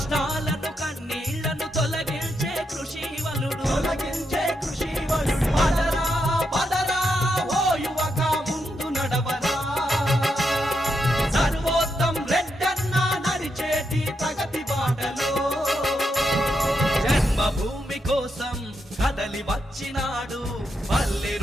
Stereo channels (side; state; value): both; normal; correlation 0.82